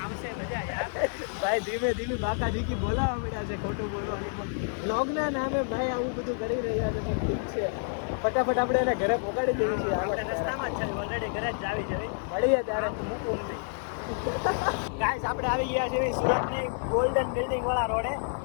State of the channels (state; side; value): silent; right; 59 dB below the other